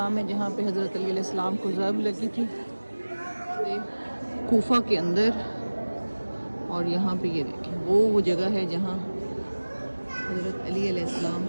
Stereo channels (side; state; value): both; inverted; correlation -1.00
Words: है जहाँ पे हज़रत अली अलैहिस्सलाम को ज़र्ब लगी थी, ये कूफा के अंदर। और यहाँ पे ये देखें वो जगह है जहाँ हज़रत अली अलैहिस्सलाम